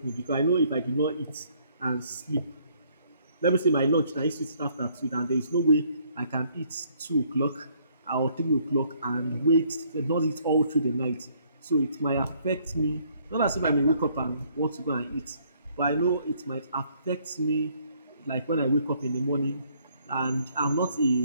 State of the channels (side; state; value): both; inverted; correlation -0.66